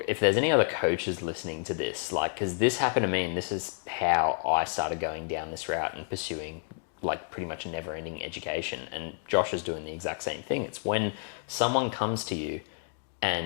if there's any other coaches listening to this, like, because this happened to me and this is how I started going down this route and pursuing like pretty much a never-ending education. And Josh is doing the exact same thing. It's when someone comes to you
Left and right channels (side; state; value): right; silent; 58 dB below the other